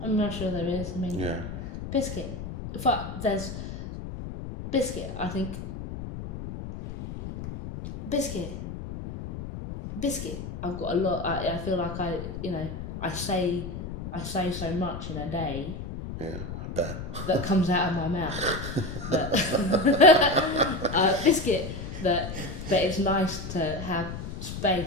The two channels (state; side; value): noise; left; rumble, 8 dB below the sound